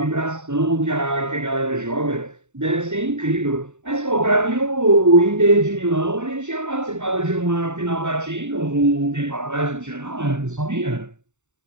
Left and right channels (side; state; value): left; late; 0.84 ms